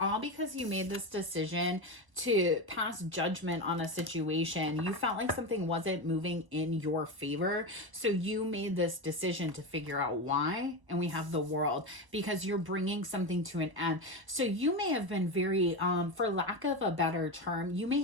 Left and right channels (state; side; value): late; left; 1.0 ms